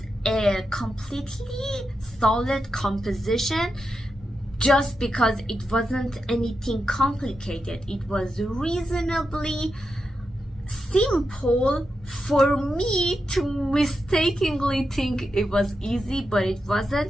a completely solid composition just because it wasn't anything complicated. It was reasonably simple for me to mistakenly think it was easy, but it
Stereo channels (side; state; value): both; normal; correlation 0.87